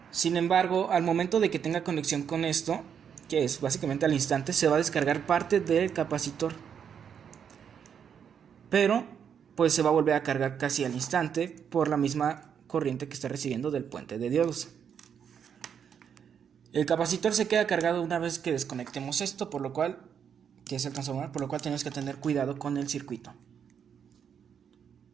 Sin embargo, al momento de que tenga conexión con esto, que es básicamente al instante, se va a descargar parte del capacitor, pero pues se va a volver a cargar casi al instante por la misma corriente que está recibiendo del puente de diodos. El capacitor se queda cargado una vez que desconectemos esto, que es el transformador, por lo cual tenemos que tener cuidado con el circuito.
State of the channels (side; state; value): left; quieter; 7.8 dB